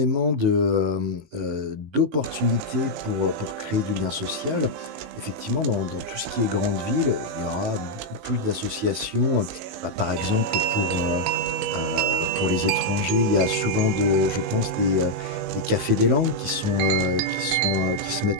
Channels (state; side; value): late; left; 19 ms